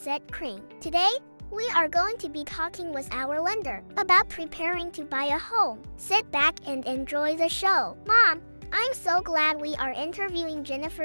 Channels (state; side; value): inverted; both; correlation -1.00